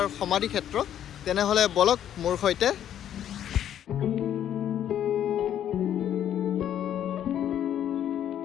সমাধি ক্ষেত্ৰ। তেনেহ'লে বলক মোৰ সৈতে।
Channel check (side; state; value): right; quieter; 10.4 dB